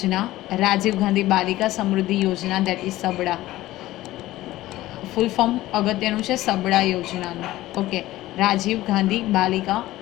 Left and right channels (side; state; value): right; quieter; 16.3 dB